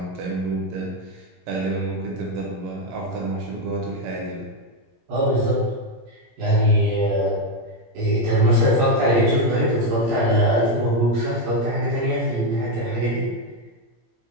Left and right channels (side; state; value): left; late; 17 ms